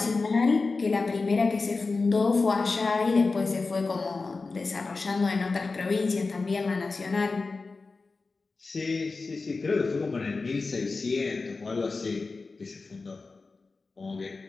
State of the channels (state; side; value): quieter; right; 4.0 dB